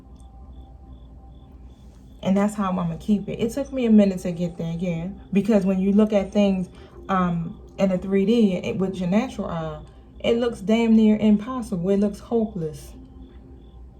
And that's how I'm going to keep it. It took me a minute to get there, yeah. Because when you look at things in a 3D with your natural eye, it looks damn near impossible. It looks hopeless.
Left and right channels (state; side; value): identical; both; correlation 1.00